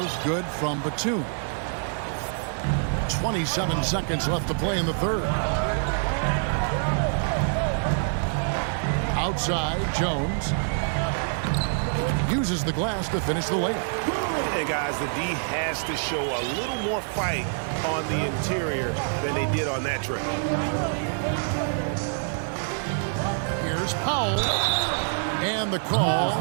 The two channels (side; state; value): left; silent; digital silence